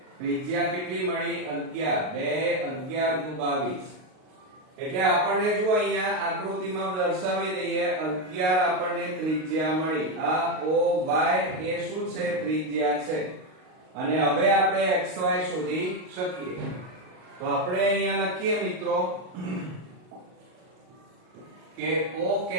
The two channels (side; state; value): left; late; 38 ms